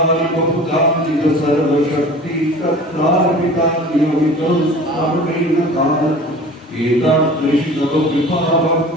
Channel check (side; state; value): both; normal; correlation 0.41